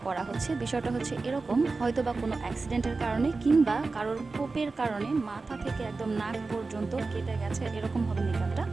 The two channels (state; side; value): quieter; left; 3.9 dB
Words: করা হচ্ছে বিষয়টা হচ্ছে এরকম, হয়তো বা কোনো অ্যাক্সিডেন্টের কারণে কিংবা কারোর কোপের কারণে মাথা থেকে একদম নাক পর্যন্ত কেটে গেছে, এরকম হবে মেকআপটা।